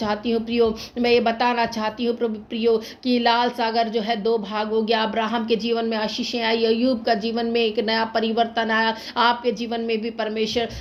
हूँ प्रियो, मैं ये बताना चाहती हूँ प्रियो कि लाल सागर जो है 2 भाग हो गया। अब्राहम के जीवन में आशीषें आई, अय्यूब का जीवन में एक नया परिवर्तन आया, आपके जीवन में भी परमेश्वर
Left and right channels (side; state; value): both; identical; correlation 1.00